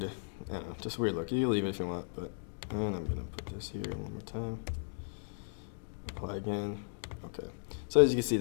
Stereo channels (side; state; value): right; silent; digital silence